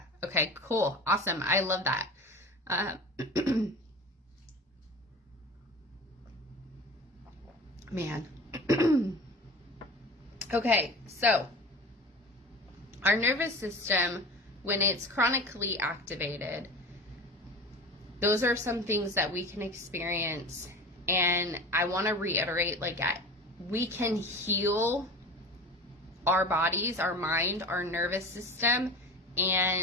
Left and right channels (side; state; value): both; normal; correlation 0.35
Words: Okay, cool. Awesome. I love that. Man. Okay, so our nervous system, when it's chronically activated, those are some things that we can experience. And I want to reiterate, like, we can heal our bodies, our mind, our nervous system,